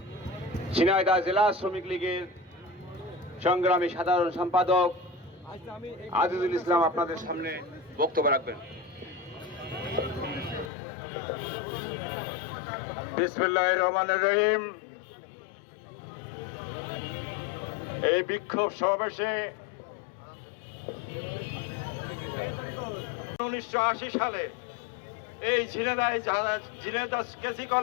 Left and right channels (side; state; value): right; drops out; at 10.7 s